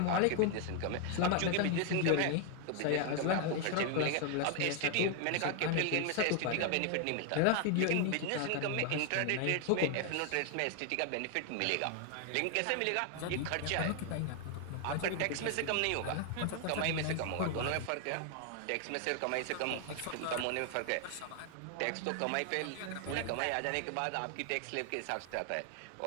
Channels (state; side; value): different; both; correlation 0.00